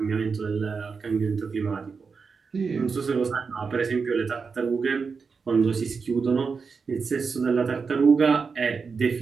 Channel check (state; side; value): quieter; left; 5.2 dB